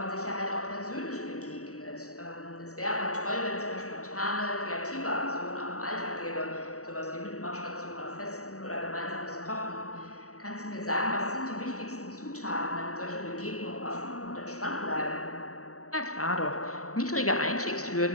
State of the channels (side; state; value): right; late; 0.65 ms